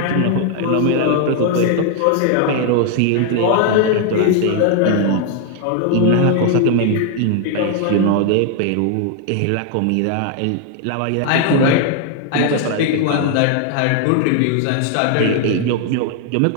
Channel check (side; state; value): both; different; correlation 0.00